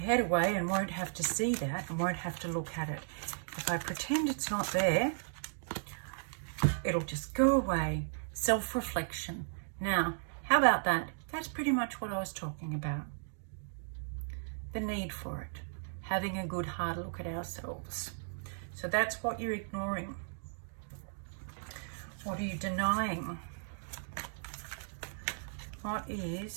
away and won't have to see that and won't have to look at it. If I pretend it's not there, it'll just go away. Self-reflection. Now, how about that? That's pretty much what I was talking about. The need for it. Having a good hard look at ourselves. So that's what you're ignoring. What are you denying? What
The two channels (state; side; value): silent; left; digital silence